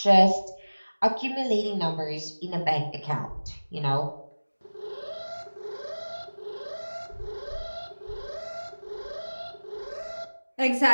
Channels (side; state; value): both; inverted; correlation -1.00